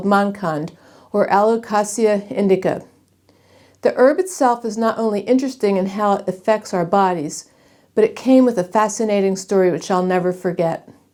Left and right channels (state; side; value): identical; both; correlation 1.00